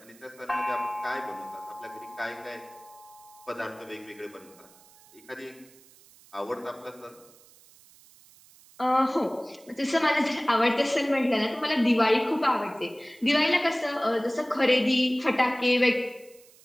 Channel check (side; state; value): right; noise; hiss, 26 dB below the sound